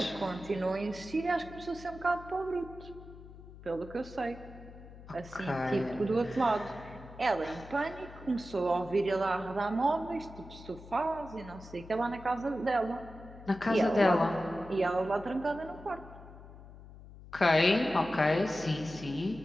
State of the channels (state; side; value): noise; left; hum, 17 dB below the sound